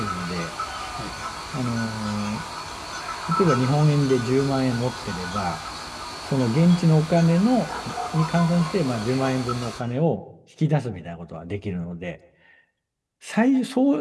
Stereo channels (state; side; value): identical; both; correlation 1.00